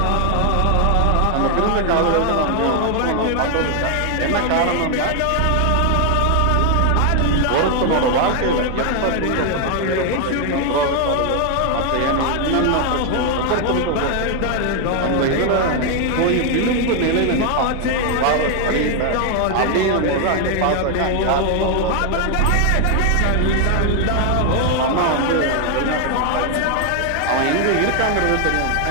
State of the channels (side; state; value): both; different; correlation 0.00